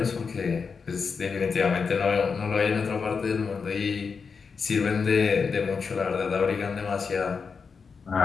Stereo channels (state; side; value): quieter; right; 5.4 dB